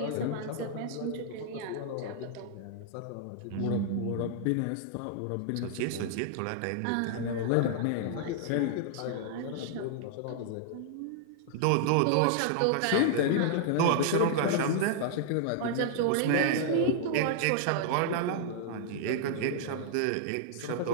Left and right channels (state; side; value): different; both; correlation -0.01